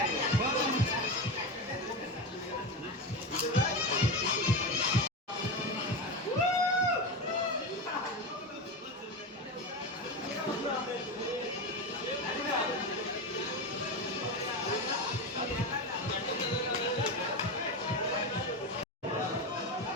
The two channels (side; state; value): both; normal; correlation 0.19